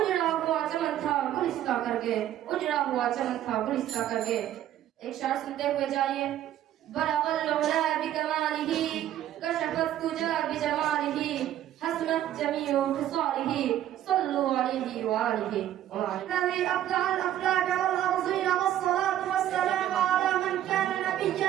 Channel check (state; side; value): quieter; left; 12.1 dB